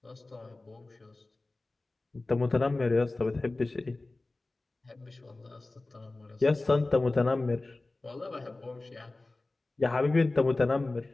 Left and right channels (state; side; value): quieter; right; 3.1 dB